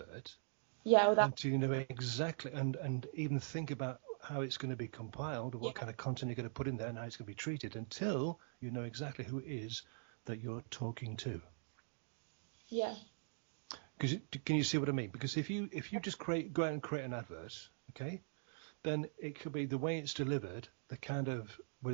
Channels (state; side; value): silent; left; digital silence